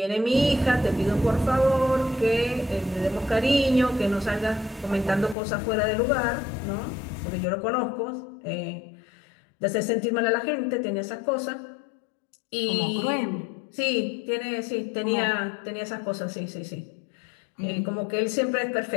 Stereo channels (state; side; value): drops out; right; at 5.4 s